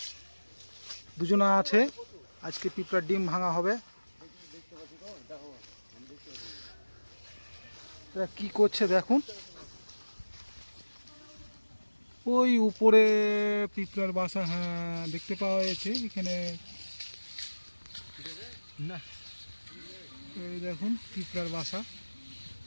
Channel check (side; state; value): both; inverted; correlation -1.00